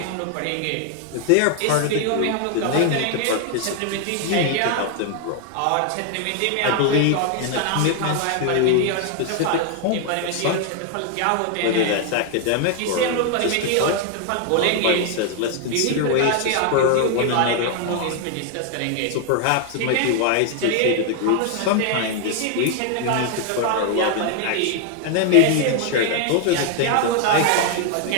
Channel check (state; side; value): different; both; correlation 0.00